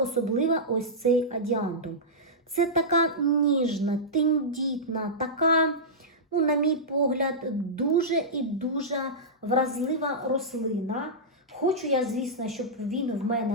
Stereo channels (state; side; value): normal; both; correlation -0.13